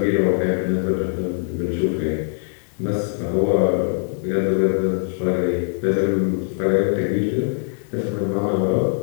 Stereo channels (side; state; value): right; silent; 64 dB below the other